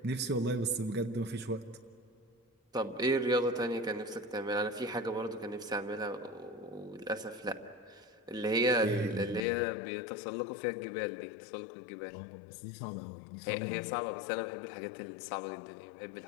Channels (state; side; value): drops out; right; at 9.4 s